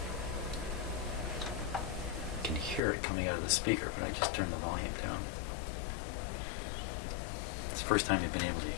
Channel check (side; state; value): right; drops out; at 2.8 s